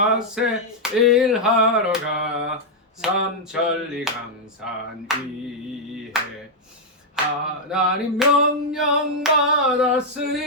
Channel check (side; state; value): both; normal; correlation -0.03